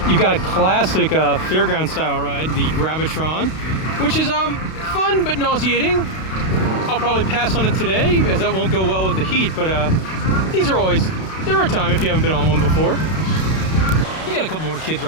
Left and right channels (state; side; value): late; right; 32 ms